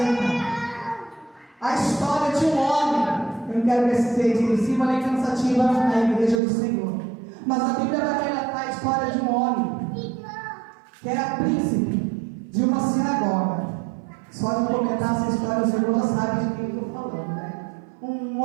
A história de um homem. Eu não quero que esse seja excessiva nem cansativa na igreja do Senhor. Mas a Bíblia vai relatar a história de um homem que era príncipe de uma sinagoga. Só de comentar essa história, os irmãos já sabem de quem eu estou falando, né? Um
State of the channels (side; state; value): left; drops out; at 6.4 s